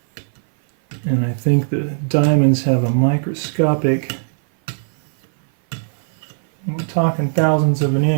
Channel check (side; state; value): left; silent; 58 dB below the other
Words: And I think the diamonds have a microscopic, we're talking thousandths of an